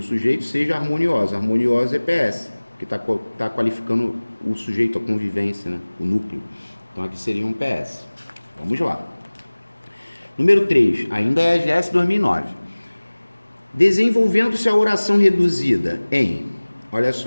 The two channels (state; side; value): inverted; both; correlation -1.00